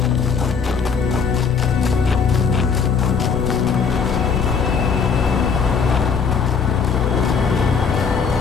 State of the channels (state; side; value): quieter; right; 5.9 dB